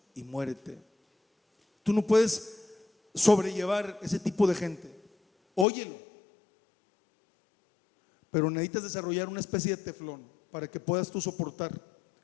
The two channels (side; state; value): right; drops out; at 5.7 s